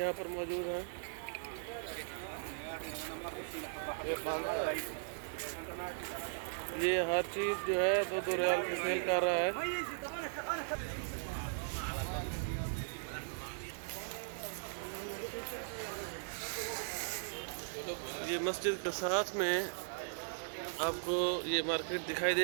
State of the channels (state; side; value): silent; left; digital silence